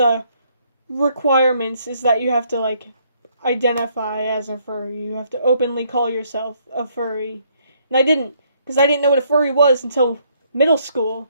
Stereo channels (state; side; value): inverted; both; correlation -0.69